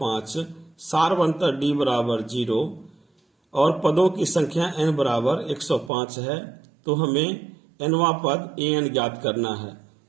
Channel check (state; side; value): drops out; left; at 5.9 s